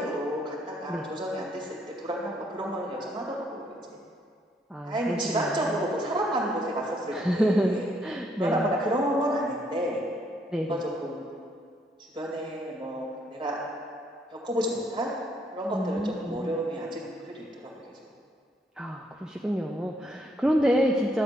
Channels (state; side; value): normal; both; correlation 0.70